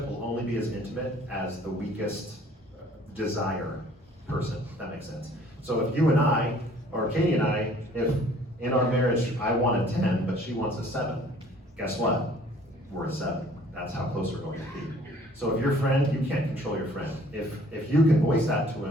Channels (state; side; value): normal; both; correlation 0.55